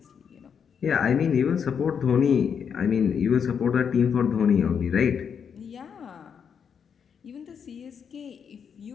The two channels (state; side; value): quieter; right; 7.1 dB